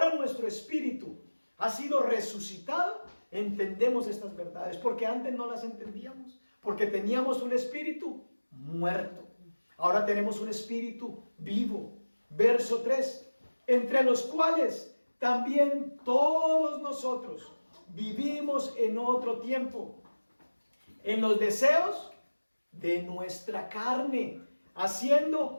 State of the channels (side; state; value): both; inverted; correlation -1.00